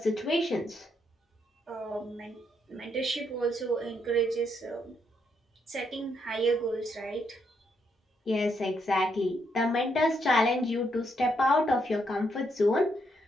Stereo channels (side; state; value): both; normal; correlation 0.76